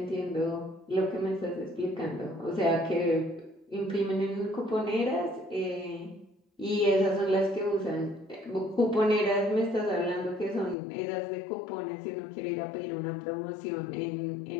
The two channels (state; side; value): drops out; right; at 10.8 s